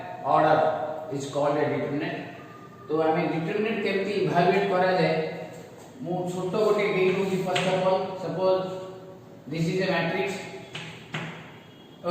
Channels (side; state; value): both; identical; correlation 1.00